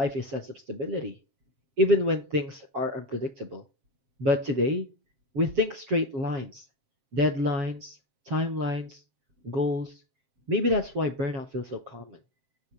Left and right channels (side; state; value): left; late; 7.5 ms